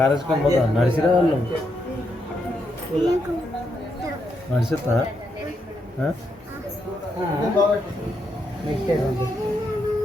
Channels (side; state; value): both; normal; correlation 0.80